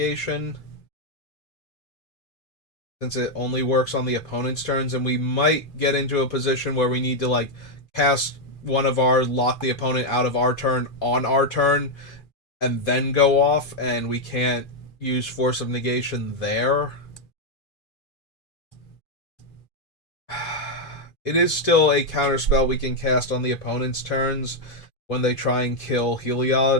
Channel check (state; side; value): late; right; 2.4 ms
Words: since it only works on the opponent's turns, and we might get into a position where we need to like cast one of our, lock the opponent out of our turn on our turn, and then go off, and we can't use Force of Negation there. It is still a counterspell we can cast on the opponent's turns when they try and kill